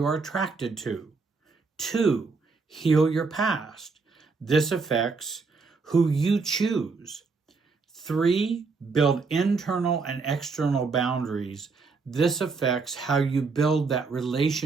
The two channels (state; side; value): quieter; left; 4.5 dB